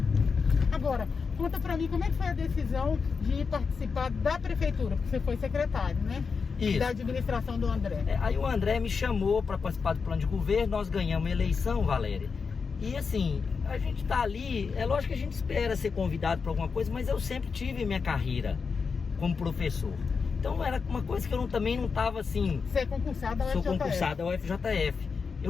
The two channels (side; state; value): right; quieter; 5.3 dB